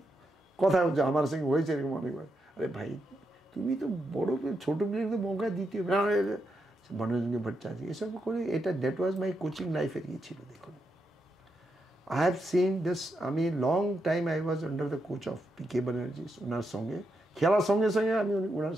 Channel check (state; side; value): normal; both; correlation 0.83